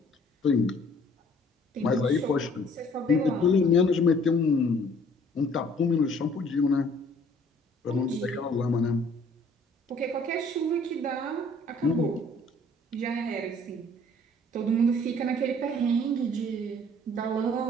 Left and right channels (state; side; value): normal; both; correlation 0.57